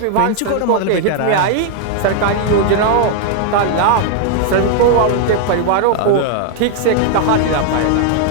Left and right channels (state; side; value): different; both; correlation 0.00